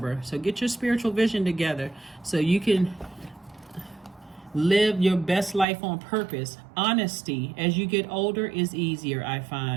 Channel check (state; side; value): drops out; left; at 5.7 s